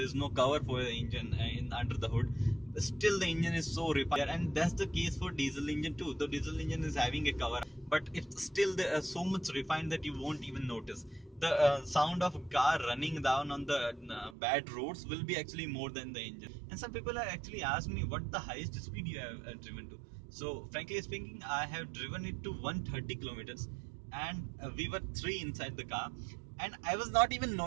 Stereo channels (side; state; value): left; drops out; at 14.4 s